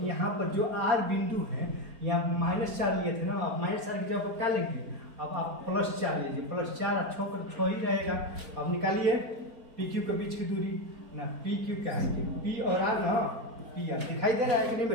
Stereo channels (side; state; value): left; late; 4.4 ms